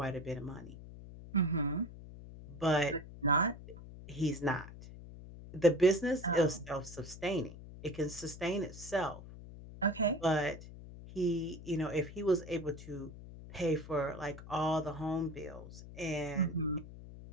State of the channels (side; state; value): left; noise; hum, 14 dB below the sound